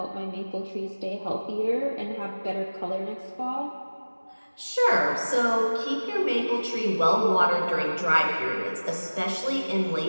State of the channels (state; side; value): inverted; both; correlation -1.00